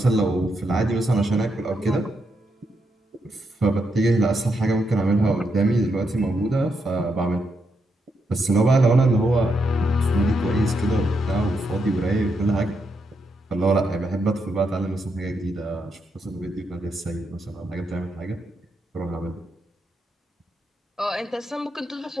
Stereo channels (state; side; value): normal; both; correlation 0.81